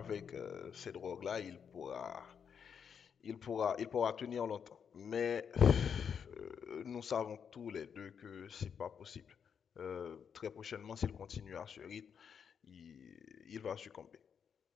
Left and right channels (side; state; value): right; quieter; 7.2 dB